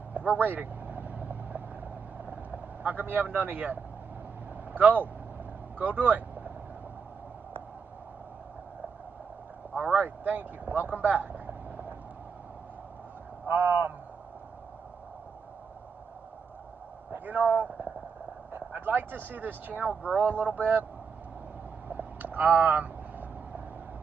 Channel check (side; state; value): left; quieter; 5.8 dB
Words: We're waiting. How come you haven't done it yet? Go. Go do it. All right, thank you. Welcome back. You know, I'd like to see this channel grow a little bit.